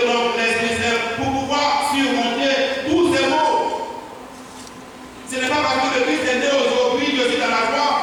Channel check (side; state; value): both; identical; correlation 1.00